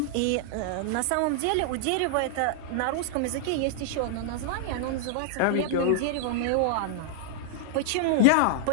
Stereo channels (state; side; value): different; both; correlation -0.01